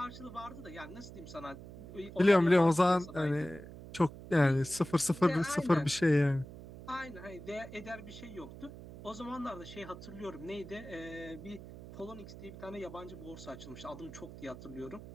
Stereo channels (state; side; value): noise; right; hum, 14 dB below the sound